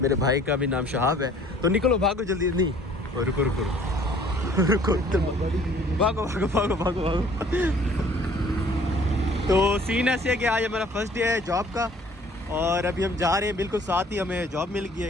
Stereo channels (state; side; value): normal; both; correlation 0.54